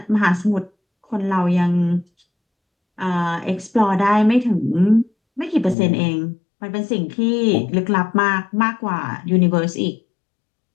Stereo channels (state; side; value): drops out; right; at 5.8 s